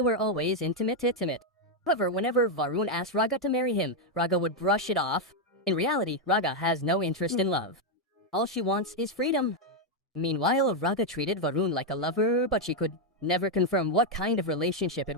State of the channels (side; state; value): both; normal; correlation 0.02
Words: were always intimate. However, whenever Varun asked Raga to marry him, Raga would brush it off. In reality, Raga has no interest in love. All she wants is freedom. Meanwhile, Raga treated Varun like a lover, but she could never confirm what kind of relationship it